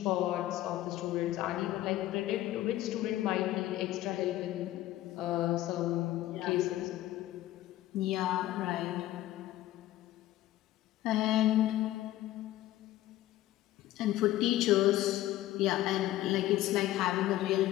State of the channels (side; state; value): right; quieter; 14.8 dB